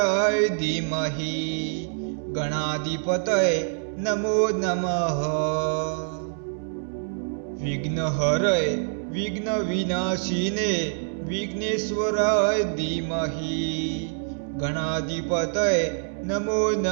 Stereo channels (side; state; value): left; silent; digital silence